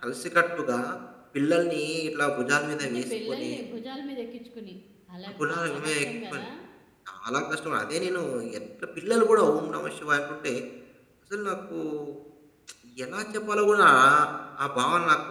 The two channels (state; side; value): identical; both; correlation 1.00